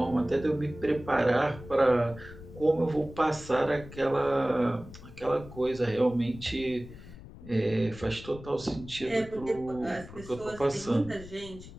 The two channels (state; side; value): noise; left; rumble, 16 dB below the sound